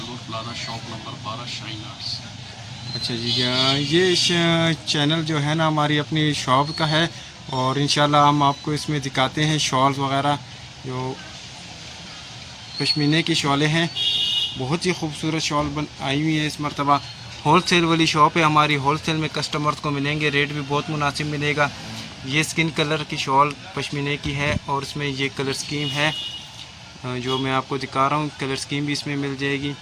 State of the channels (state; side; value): identical; both; correlation 1.00